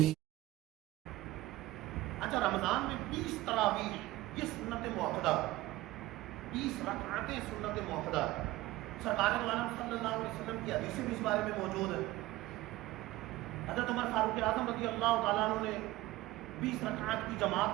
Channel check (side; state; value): left; quieter; 17.7 dB